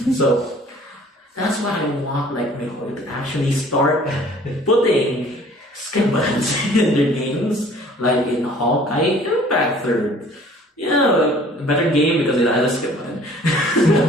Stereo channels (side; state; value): both; normal; correlation 0.52